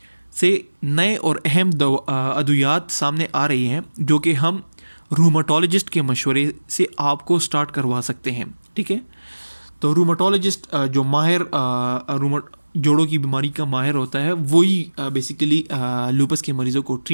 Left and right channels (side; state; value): both; inverted; correlation -1.00